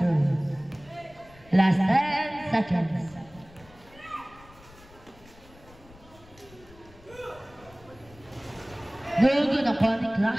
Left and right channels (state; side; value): noise; left; rumble, 24 dB below the sound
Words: Last 10 seconds. No good upon the